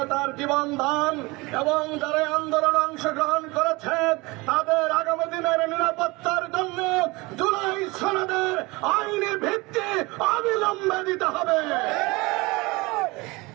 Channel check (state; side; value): quieter; left; 24.0 dB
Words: জীবন দান এবং যারা আন্দোলনে অংশগ্রহণ করেছে তাদের আগামী দিনের নিরাপত্তার জন্য জুলাই সনদের আইনি ভিত্তি অবিলম্বে দিতে হবে।